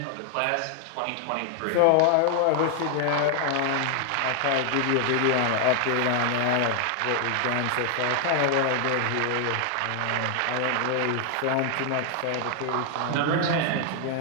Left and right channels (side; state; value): both; different; correlation 0.00